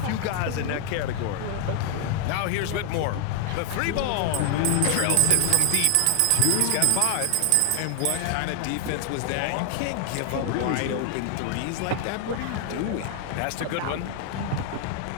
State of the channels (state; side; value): different; both; correlation 0.00